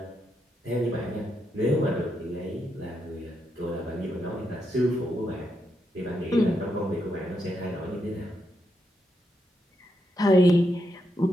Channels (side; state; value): both; normal; correlation 0.82